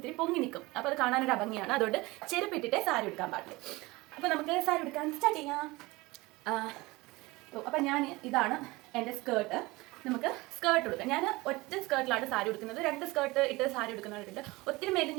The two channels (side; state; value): left; quieter; 21.9 dB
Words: പൊങ്ങി നിൽക്കും. അപ്പോൾ അത് കാണാനൊരു ഭംഗിയാണ്. അതുകൊണ്ട് ചെരുപ്പിട്ടിട്ടേ സാരി ഉടുക്കാൻ പാടില്ല. അപ്പോൾ നമുക്ക് സാരി ഉടുക്കാൻ സ്റ്റാർട്ട് ചെയ്യാം. അപ്പം ഇതാണ് എൻ്റെ സ്കേർട്ട്. നമുക്ക് സ്കേർട്ട് ഉടുക്കാം. ഞാൻ ഒറ്റ സ്കേർട്ടിലാണ് സാരി ഉടുക്കുന്നത്. 2 സ്കേർട്ട് ഇട്ട് സാരി ഉടുക്കുന്നവരുണ്ട്. ഒത്തിരി